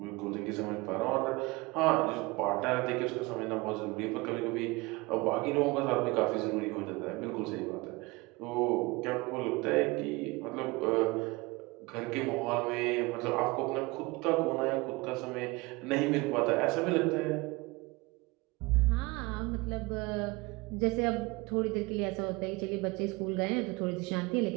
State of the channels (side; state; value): left; quieter; 23.9 dB